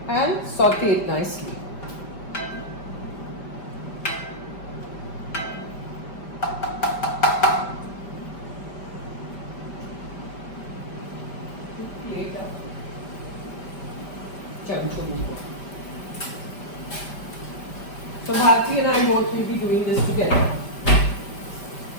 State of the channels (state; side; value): late; right; 5.1 ms